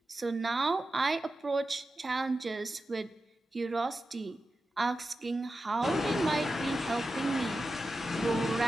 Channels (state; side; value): normal; both; correlation 0.92